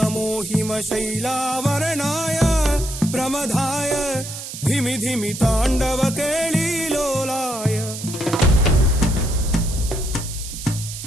హిమశైలావరణాయ ప్రమదాయ ధిమి ధిమి తాండవ కేళీలోలాయ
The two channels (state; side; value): noise; right; hiss, 10 dB below the sound